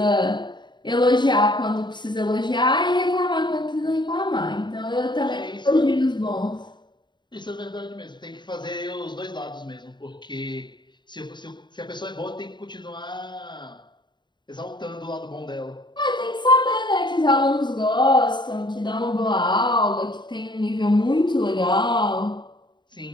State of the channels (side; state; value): right; late; 0.22 ms